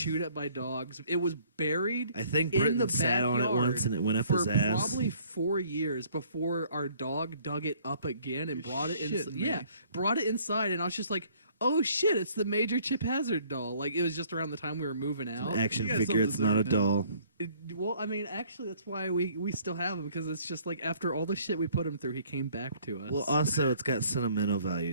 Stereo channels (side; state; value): both; inverted; correlation -0.59